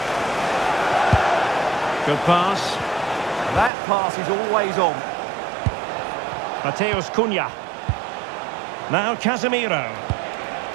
Good pass. That pass is always on. Mateus Cunha. Now Casemiro.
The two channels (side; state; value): left; drops out; at 3.7 s